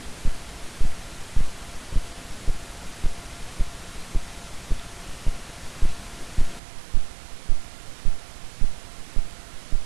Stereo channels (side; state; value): left; drops out; at 6.6 s